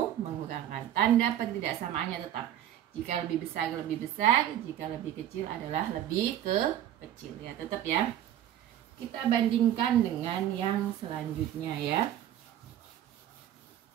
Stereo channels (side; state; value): left; quieter; 11.6 dB